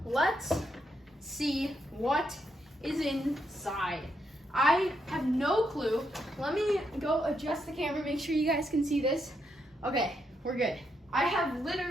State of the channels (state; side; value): normal; both; correlation 0.79